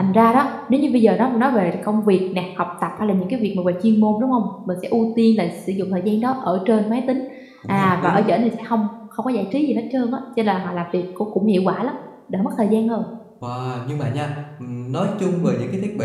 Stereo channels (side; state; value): both; identical; correlation 1.00